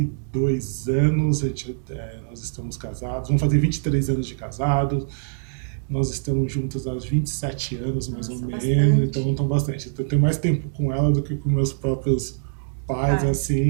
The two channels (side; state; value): left; silent; digital silence